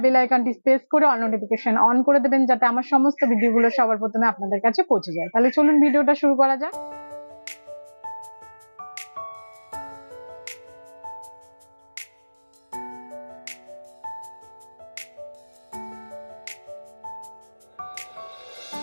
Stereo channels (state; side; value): inverted; both; correlation -1.00